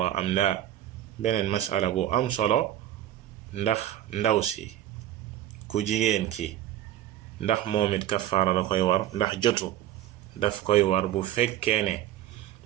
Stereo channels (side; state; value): left; quieter; 12.4 dB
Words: am la beneen masala bu am solo ndax ndaw si ku jigéen ki ndax moom it kafaara da koy war ndax jotu daf koy war bu fekkee ne